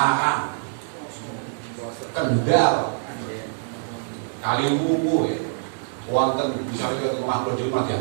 Kendal, Kaliwungu ya, wonten bisa kita ngaplo di rumah ya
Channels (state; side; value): silent; left; 62 dB below the other